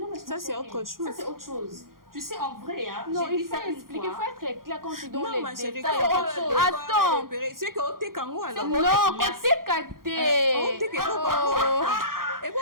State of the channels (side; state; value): left; late; 0.91 ms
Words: mais ça, c'est autre chose. Ça, c'est autre chose. Tu sais, en vrai, hein, non, il faut expliquer, il faut être clair quand tu donnes les détails. Attends. C'est que tu es kango alors. Non, tu es caté.